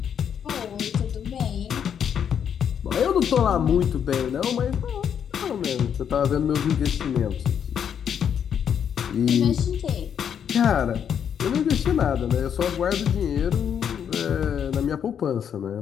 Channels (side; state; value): right; quieter; 8.3 dB